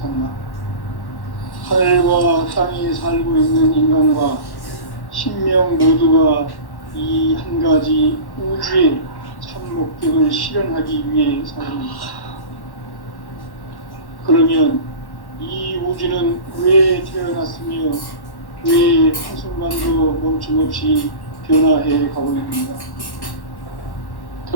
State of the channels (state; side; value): late; right; 1.1 ms